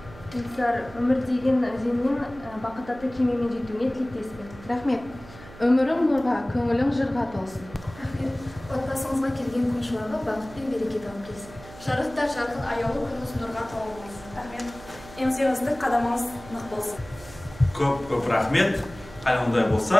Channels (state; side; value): noise; right; hum, 18 dB below the sound